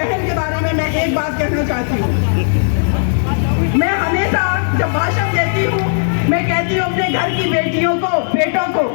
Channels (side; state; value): right; silent; digital silence